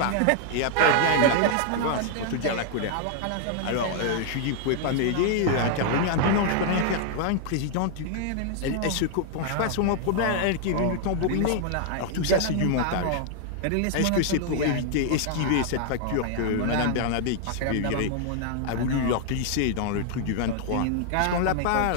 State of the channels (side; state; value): both; different; correlation 0.00